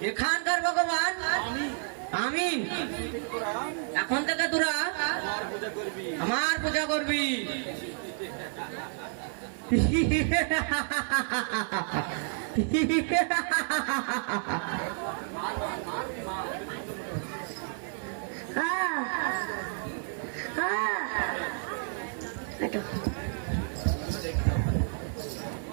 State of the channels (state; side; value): silent; left; 56 dB below the other